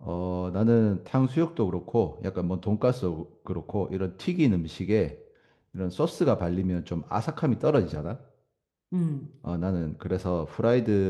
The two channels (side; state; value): both; identical; correlation 1.00